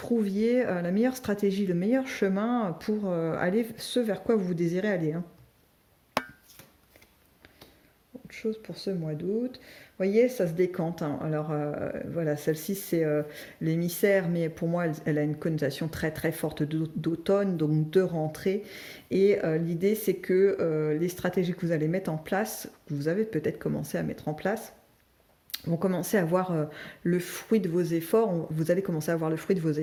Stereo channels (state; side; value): identical; both; correlation 1.00